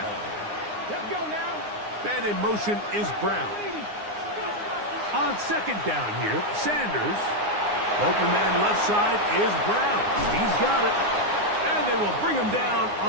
Let's go now. And in motion is Brown. On 2nd down here, Sanders. Open man left side is Brown. He's got it. And they will bring him down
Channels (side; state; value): left; late; 9.7 ms